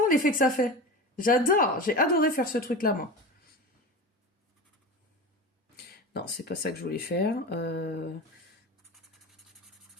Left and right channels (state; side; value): normal; both; correlation 0.29